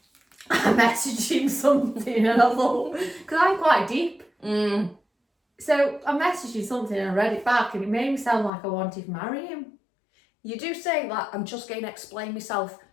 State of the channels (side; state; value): right; drops out; at 8.5 s